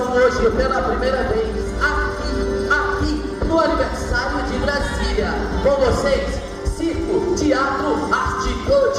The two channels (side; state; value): both; identical; correlation 1.00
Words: hoje pela primeira vez aqui no aniversário de Brasília. Com vocês, Circo Teatro